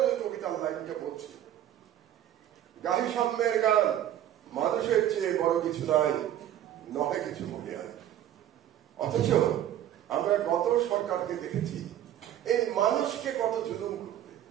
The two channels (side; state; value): left; quieter; 11.5 dB